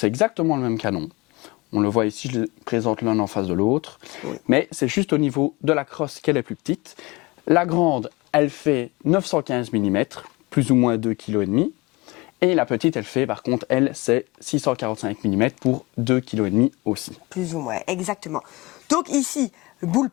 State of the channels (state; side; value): quieter; right; 23.8 dB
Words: exactement le même canon. On le voit ici, je les présente l'un en face de l'autre. Oui. Mais c'est juste au niveau de la crosse qu'elle est plus petite. La grande, elle fait 915 mm, plus ou moins 2,5 kg. Et la petite, elle fait, par contre, elle, c'est 645 mm pour 2,5 kg aussi. Plus ou moins, exactement. Donc ici, le